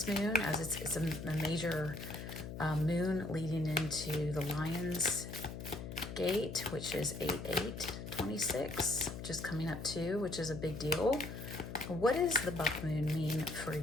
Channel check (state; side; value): noise; left; hum, 8 dB below the sound